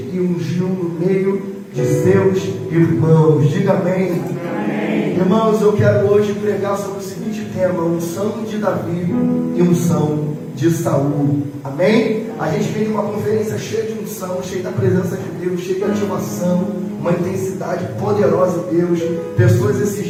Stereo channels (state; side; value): identical; both; correlation 1.00